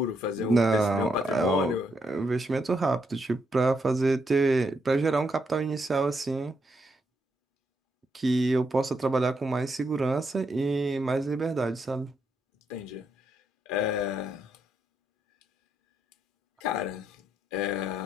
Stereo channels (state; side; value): normal; both; correlation 0.79